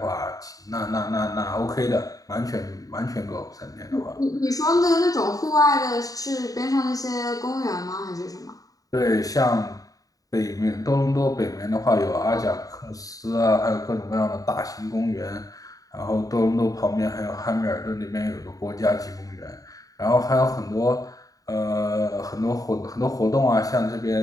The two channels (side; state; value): right; late; 0.17 ms